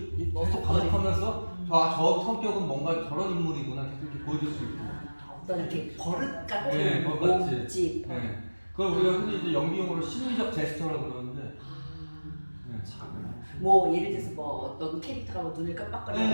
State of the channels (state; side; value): inverted; both; correlation -1.00